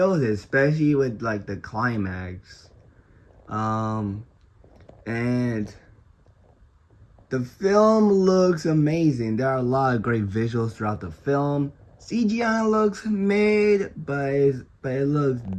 it, especially with like the climax. And the film looks amazing. There are a lot of great visuals throughout the film. CGI looks mid, but it looks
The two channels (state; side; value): identical; both; correlation 1.00